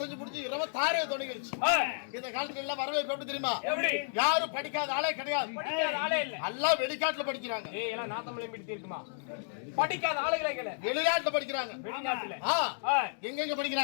முடிஞ்சு 26 தொடங்கிருச்சு இந்த காலத்துல எல்லாம் வரவேற்பு எப்படி தெரியுமா யாரும் படிக்காத ஆளே கிடையாது எல்லாம் வெளிநாட்டுல படிக்கிறாங்க படிக்காத ஆளுகளே வெளிநாட்டுல படிக்கிறாங்க எங்க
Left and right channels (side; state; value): right; silent; digital silence